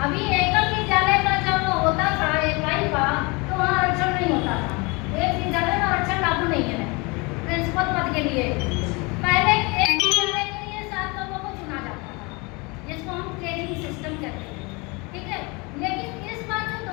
के लिए पहले एक सर्वे के लिए 7 लोगों को चुना जाता था, जिसको हम ट्रेनिंग सिस्टम कहते हैं, ठीक है। लेकिन इस बार जो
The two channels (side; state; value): right; quieter; 27.7 dB